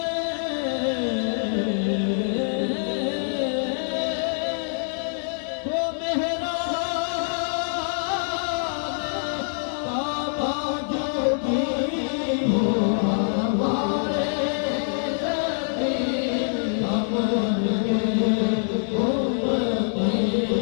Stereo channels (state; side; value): silent; right; digital silence